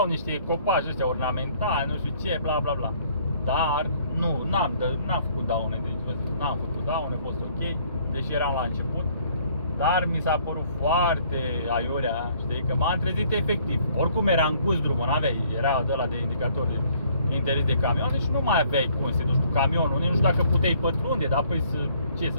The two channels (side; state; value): both; inverted; correlation -0.61